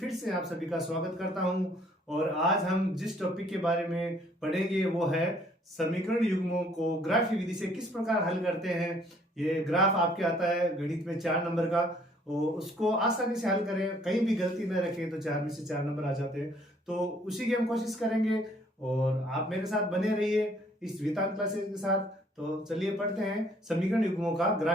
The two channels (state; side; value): normal; both; correlation 0.62